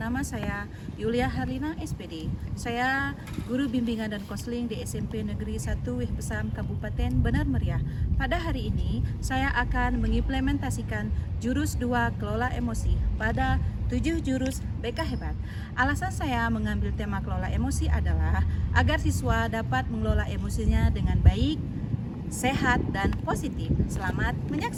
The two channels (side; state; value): both; identical; correlation 1.00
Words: saya Yulia Harlina SPD. Saya Guru Bimbingan dan Konseling di SMP Negeri 1 Wih Pesam Kabupaten Benar Meriah. Pada hari ini saya akan mengimplementasikan jurus 2 kelola emosi pada 7 jurus BK hebat. Alasan saya mengambil tema kelola emosi adalah agar siswa dapat mengelola emosinya dengan baik, sehat, dan positif. Selamat